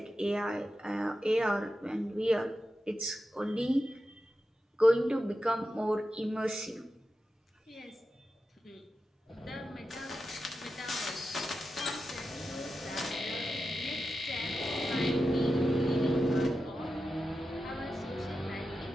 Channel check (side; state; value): both; normal; correlation 0.91